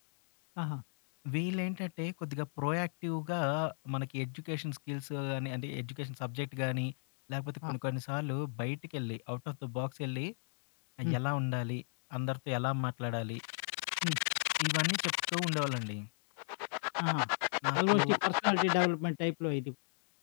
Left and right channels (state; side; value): silent; right; digital silence